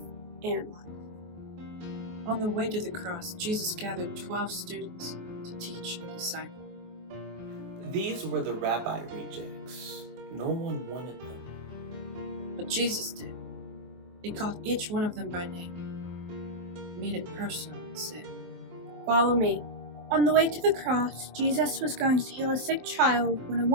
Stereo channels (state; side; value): late; left; 23 ms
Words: and life. On the way to the cross, Jesus gathered 12 students to teach and disciple. These were the rabbi rejects. No one wanted them. But Jesus did. He called each one of them by name, made it personal, and said, "Follow me." On the way to the cross, Jesus was going to heal a sick child when a